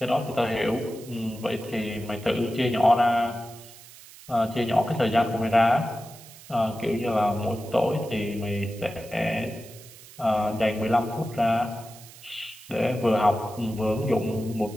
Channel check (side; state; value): right; noise; hiss, 19 dB below the sound